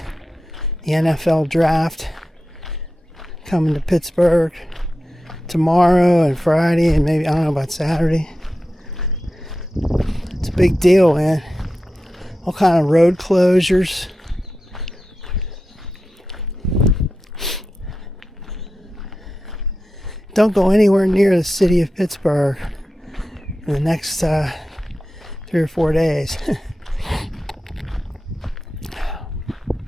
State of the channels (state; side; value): normal; both; correlation 0.92